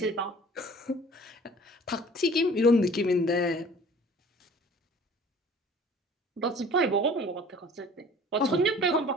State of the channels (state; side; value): normal; both; correlation 0.48